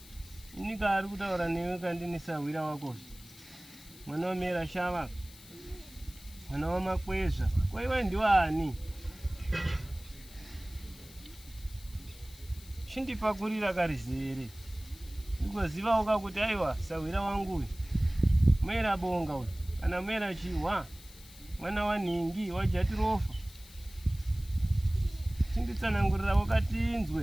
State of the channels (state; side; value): noise; left; hiss, 20 dB below the sound